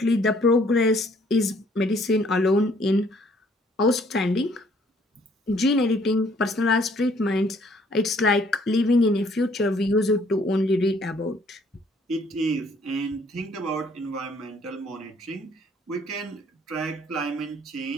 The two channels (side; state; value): both; normal; correlation 0.62